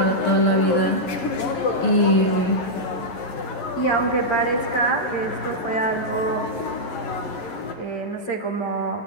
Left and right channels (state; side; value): late; right; 11 ms